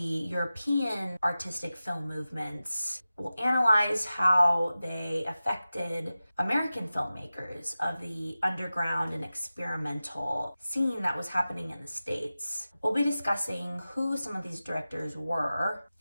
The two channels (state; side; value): inverted; both; correlation -0.95